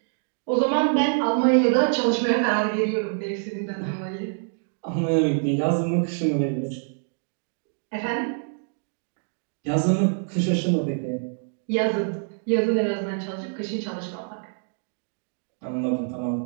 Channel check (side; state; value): left; silent; 61 dB below the other